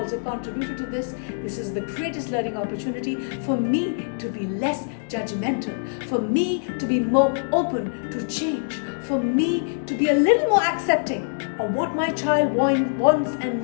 contributed to this. This is the greatest learning opportunity for me to be less judgmental, for me to be more open to change, for me to be a little more accepting of what my child wants and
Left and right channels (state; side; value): silent; right; digital silence